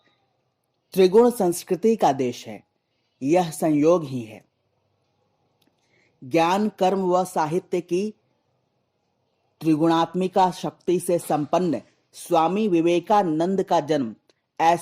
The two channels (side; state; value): both; identical; correlation 1.00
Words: त्रिगुण संस्कृति का देश है, यह संयोग ही है। ज्ञान, कर्म व साहित्य की त्रिगुणात्मिका शक्ति से संपन्न स्वामी विवेकानंद का जन्म